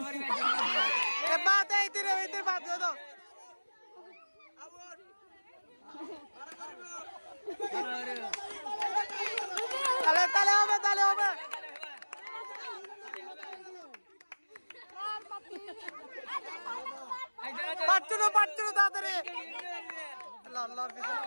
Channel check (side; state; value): both; inverted; correlation -1.00